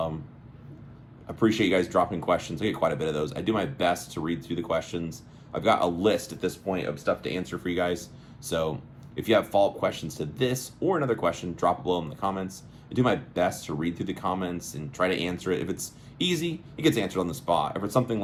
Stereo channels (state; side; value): identical; both; correlation 1.00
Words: Appreciate you guys dropping questions. I get quite a bit of those. I do my best to read through the questions. I've got a list at this point of stuff to answer for you guys. So if you have follow-up questions to this or another question, drop it below in the comments. I do my best to read through the comments and try to answer it. If it's easy, it gets answered on the spot. If it's something